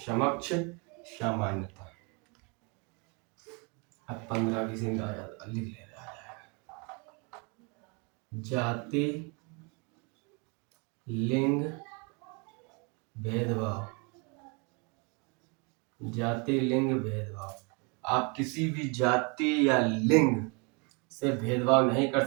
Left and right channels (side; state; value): left; quieter; 32.6 dB